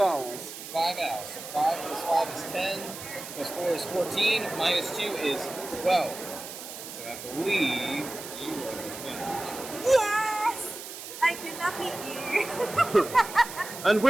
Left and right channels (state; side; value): noise; right; hiss, 11 dB below the sound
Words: owls. 5 owls. So 5 plus 5 is 10, plus 4 is 14, minus 2 is 12. So I believe you are the winner. Yes! I could not beat you. And